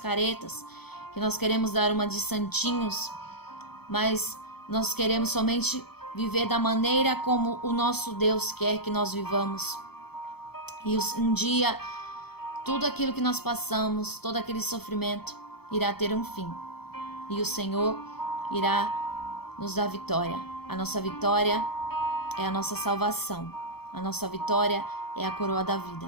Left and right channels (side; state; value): right; late; 0.96 ms